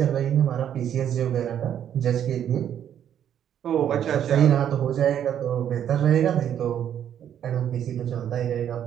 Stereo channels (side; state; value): left; quieter; 9.8 dB